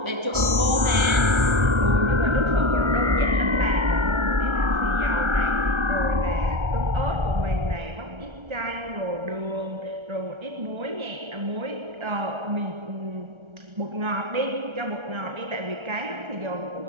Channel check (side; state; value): left; late; 1.3 ms